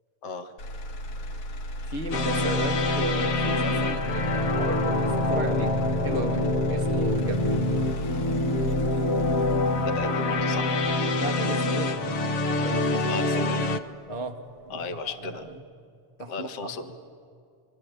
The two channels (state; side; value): late; right; 7.2 ms